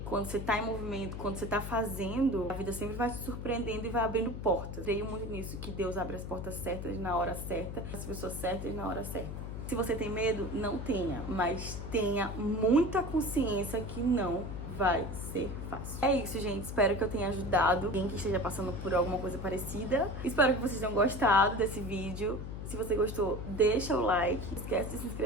quando você tá em movimento, quando você tá fazendo, a vida sempre vai te surpreendendo e vai abrindo portas. Creio muito nisso, que Deus abre as portas certas na hora certa, as pessoas certas na hora certa. Se você tem medo, não tenha, mas tenha muita consciência que não vai ser fácil. É isso, gente. Espero que eu tenha ajudado quem que esteja passando por alguma coisa parecida. Espero que vocês tenham gostado desse vídeo. Se você gostou, deixa o like. Não esquece de se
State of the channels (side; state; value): left; noise; hum, 7 dB below the sound